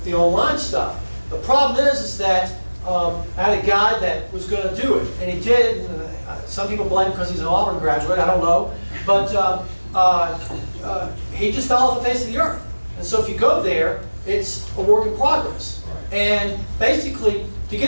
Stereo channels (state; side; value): inverted; both; correlation -1.00